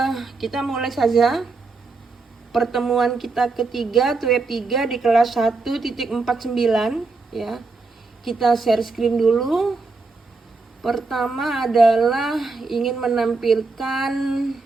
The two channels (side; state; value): left; quieter; 3.9 dB